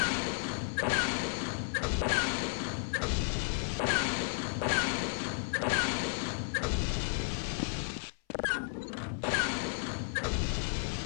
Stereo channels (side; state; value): right; silent; 56 dB below the other